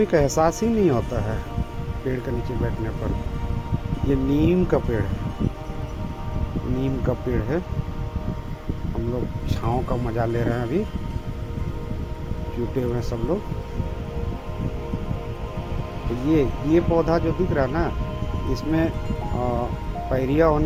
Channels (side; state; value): both; identical; correlation 1.00